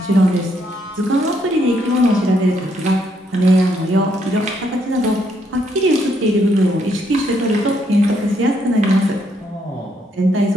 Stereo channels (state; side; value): normal; both; correlation 0.73